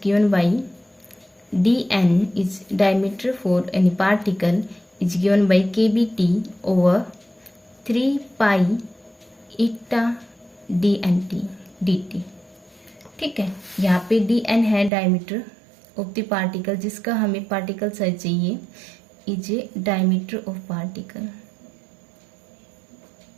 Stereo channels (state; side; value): drops out; left; at 14.9 s